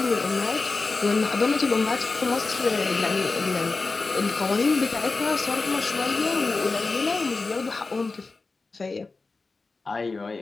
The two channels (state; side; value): quieter; right; 3.8 dB